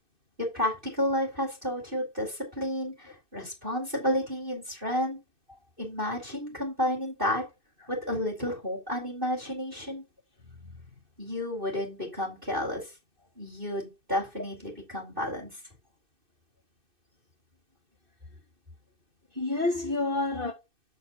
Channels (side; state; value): left; late; 2.6 ms